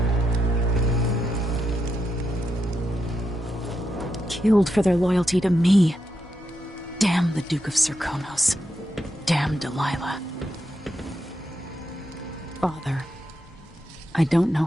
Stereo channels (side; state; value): both; normal; correlation 0.84